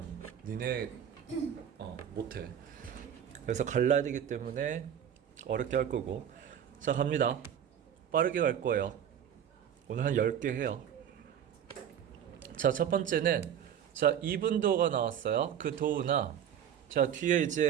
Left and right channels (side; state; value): left; quieter; 9.3 dB